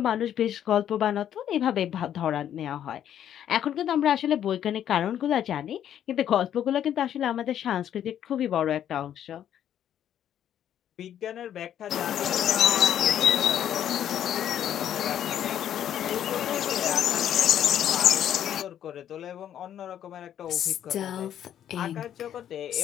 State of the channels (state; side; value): quieter; right; 10.3 dB